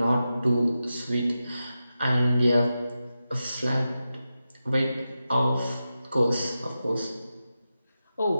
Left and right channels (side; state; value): both; inverted; correlation -0.91